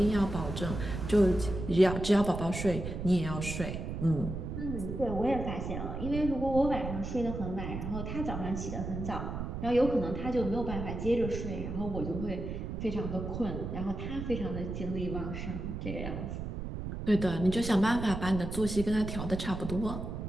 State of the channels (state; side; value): noise; right; rumble, 5 dB below the sound